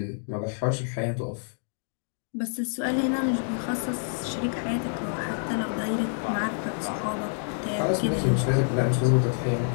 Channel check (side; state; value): right; silent; digital silence